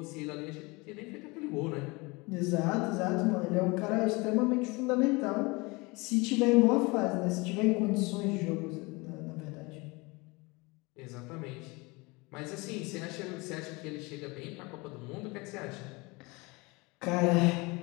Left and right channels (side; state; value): right; quieter; 25.6 dB